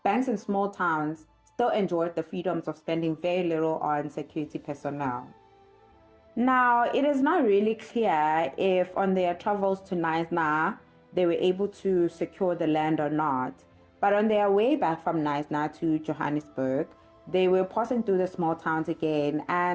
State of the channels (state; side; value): identical; both; correlation 1.00